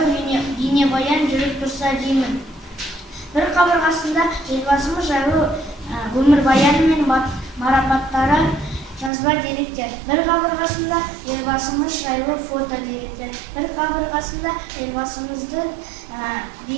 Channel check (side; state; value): left; drops out; at 9.1 s